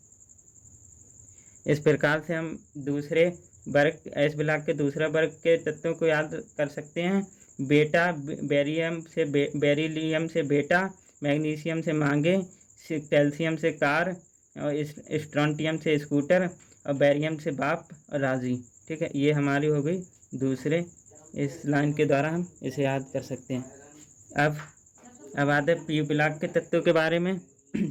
इस प्रकार से हम दूसरे वर्ग एस ब्लॉक के दूसरा वर्ग के तत्वों को याद कर सकते हैं। बेटा, बेरिलियम से बेटा, मैग्नीशियम से मांगे, कैल्शियम से कार और स्ट्रोंटियम से स्कूटर और बेरियम से बाप और राजी। ठीक है, ये हमारी हो गई दूसरे। इस लाइन के द्वारा हम इसे याद कर सकते हैं। अब आते हैं पी ब्लॉक के तत्वों के बारे में।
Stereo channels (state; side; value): identical; both; correlation 1.00